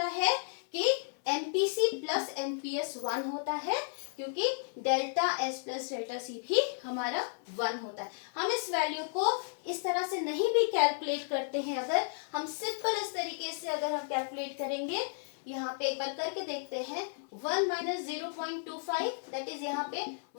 है कि एमपीसी प्लस एमपीएस 1 होता है, क्योंकि delta S plus delta C भी हमारा 1 होता है। हम इस वैल्यू को इस तरह से नहीं भी कैलकुलेट करते हैं। अगर हम सिंपल इस तरीके से अगर हम कैलकुलेट करेंगे, यहाँ पे एक बार करके देखते हैं। 1 माइनस 0.25, दैट इज यहाँ पे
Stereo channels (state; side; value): silent; right; 56 dB below the other